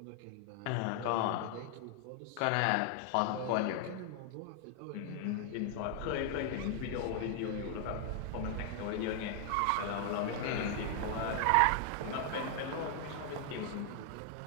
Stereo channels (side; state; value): both; different; correlation 0.00